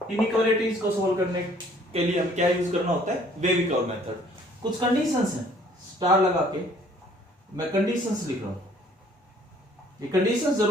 इनइक्वालिटीज को सोल्व करने के लिए हम क्या यूज करना होता है, वेवी कर्व मेथड। कुछ कंडीशंस हैं, स्टार लगा के मैं कंडीशंस लिख रहा हूं, ये कंडीशंस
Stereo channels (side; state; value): both; normal; correlation 0.58